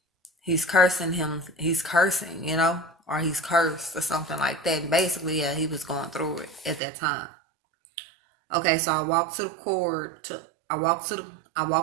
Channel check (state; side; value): drops out; left; at 6.8 s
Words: He's cursing him. He's cursing, or he's cursed or something like that. And basically, yeah, he was going through it at that time. Okay, so I walk to the cord. I walk